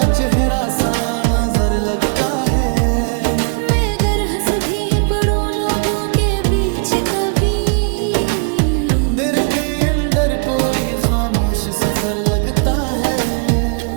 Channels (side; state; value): left; quieter; 39.7 dB